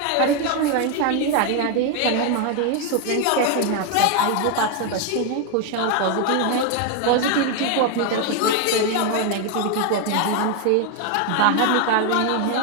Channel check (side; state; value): both; different; correlation 0.01